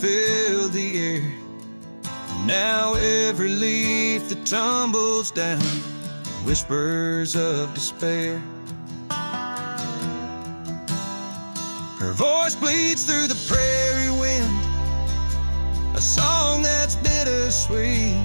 the air. Now every leaf that tumbles down whispers of despair. Her voice bleeds through the prairie wind, a song that's bittersweet.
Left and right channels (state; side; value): inverted; both; correlation -1.00